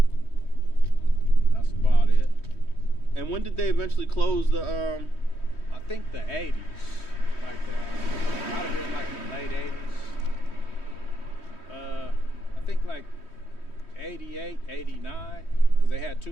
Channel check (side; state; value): right; late; 3.1 ms